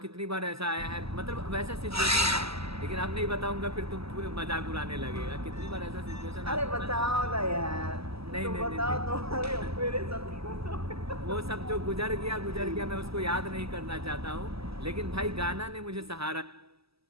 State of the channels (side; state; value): left; late; 0.77 ms